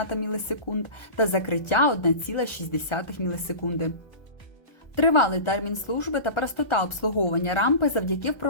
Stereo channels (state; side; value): late; right; 1.4 ms